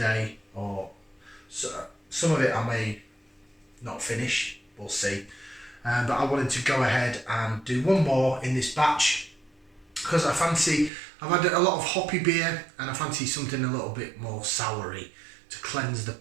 or so, some of it I may not finish, we'll see. But I wanted to go ahead and do one more in this batch, because I've had a lot of hoppy beer and I fancy something a little bit more soury to cleanse the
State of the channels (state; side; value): drops out; left; at 10.9 s